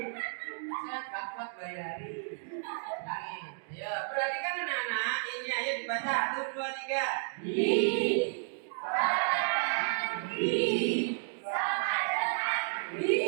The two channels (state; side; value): silent; left; digital silence